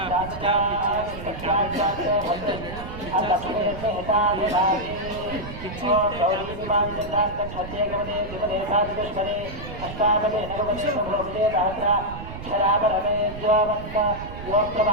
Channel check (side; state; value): right; noise; rumble, 11 dB below the sound